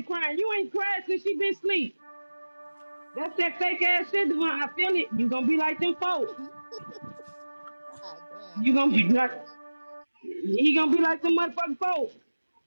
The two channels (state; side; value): inverted; both; correlation -1.00